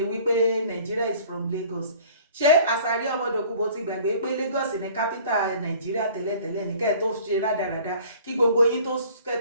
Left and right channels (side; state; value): both; inverted; correlation -0.50